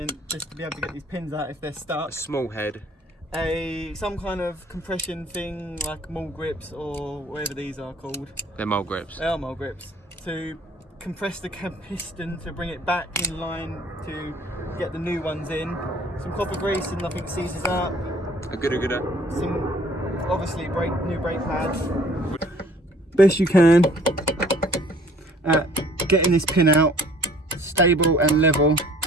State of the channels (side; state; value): both; normal; correlation 0.55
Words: just to be able to get these pins out if they're stuck. A small head. Some kind of compression thing like mole grips or whatever these are called. They're mole grips. They are mole grips. To compress the piston to bring it back in line to get the new ones in. Some copper grease and nothing seizes up. A gooder. Some obviously new brake pads. Best you can at getting this pin out stable and level.